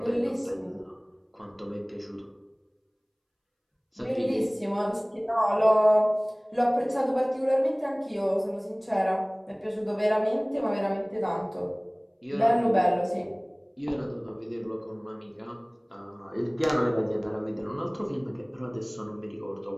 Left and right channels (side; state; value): both; identical; correlation 1.00